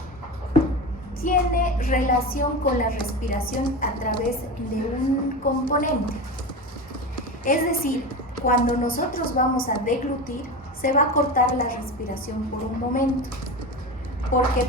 tiene relación con la respiración a través de un componente. Es decir, cuando nosotros vamos a deglutir, se va a cortar la respiración por un momento, porque el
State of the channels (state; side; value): normal; both; correlation 0.25